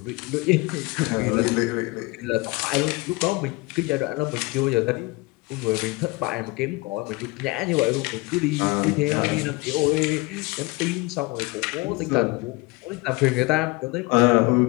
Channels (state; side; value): quieter; right; 23.6 dB